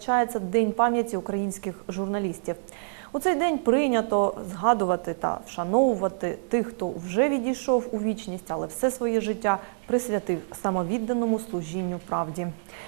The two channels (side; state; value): left; silent; 60 dB below the other